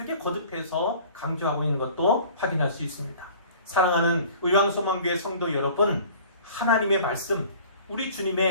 거듭해서 강조하고 있는 것도 확인할 수 있습니다. 사랑하는 의왕소망교회 성도 여러분, 하나님의 말씀, 우리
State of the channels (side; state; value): both; inverted; correlation -0.47